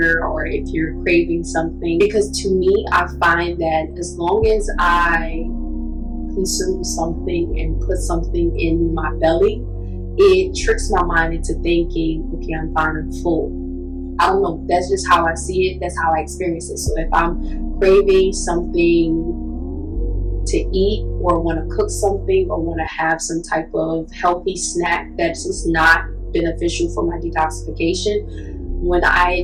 or if you're craving something. Because to me, I find that as long as I consume something and put something in my belly, it tricks my mind into thinking, okay, I'm fine, I'm full. I don't know, that's just how I see it, that's how I experience it. So if I'm craving something to eat, or want to cook something, or want to have some type of healthy snack that's just not beneficial for my detoxification, when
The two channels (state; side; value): identical; both; correlation 1.00